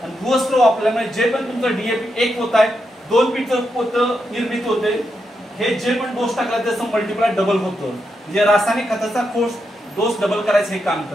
आणि भूवस्त्र वापरल्यामुळे जे पण तुमचं डीएपी 1 पोत आहे 2 पीठचं पोतं निर्मित होते. हे जे पण डोस टाकला त्याचं मल्टिप्लाय डबल होतं. म्हणजे रासायनिक खताचा डोस डबल करायचं हे काम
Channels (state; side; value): normal; both; correlation 0.84